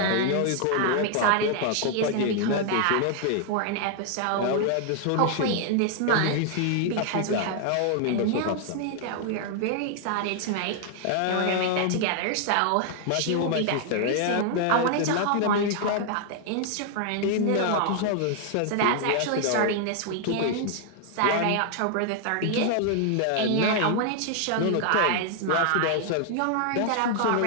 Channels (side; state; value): both; different; correlation 0.00